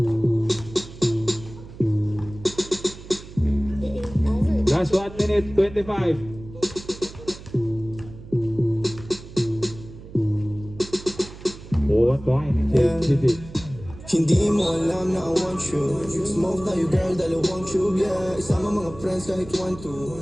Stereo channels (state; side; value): noise; right; hum, 16 dB below the sound